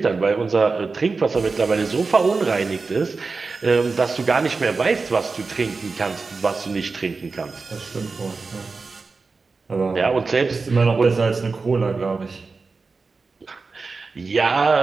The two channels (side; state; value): left; quieter; 4.2 dB